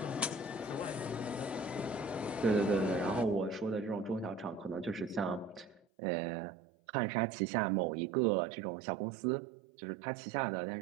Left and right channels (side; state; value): left; drops out; at 5.9 s